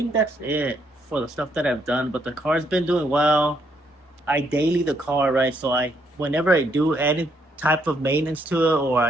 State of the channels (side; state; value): both; normal; correlation 0.73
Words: that's it for the stuff that I've done. But the car's been doing well. I daily the car, right? So whenever I do any type of maintenance to it or